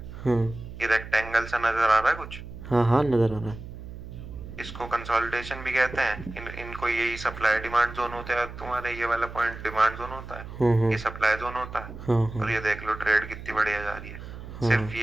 हाँ ये रेक्टेंगल सा नजर आ रहा है कुछ, हाँ। हाँ नज़र आ रहा है। इसको कंसोलिडेशन भी कहते हैं। इनको यही सप्लाई डिमांड जोन होता है, तुम्हारे ये वाला पॉइंट डिमांड जोन होता है, हाँ हाँ। ये सप्लाई जोन होता है। हाँ हाँ। और ये देख लो ट्रेड कितनी बढ़िया जा रही है, हाँ। सिर्फ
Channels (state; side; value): noise; right; hum, 12 dB below the sound